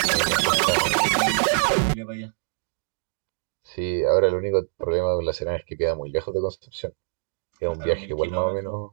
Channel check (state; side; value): silent; left; digital silence